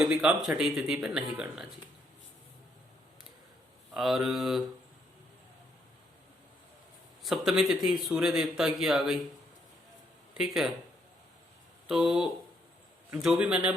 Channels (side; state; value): both; normal; correlation 0.73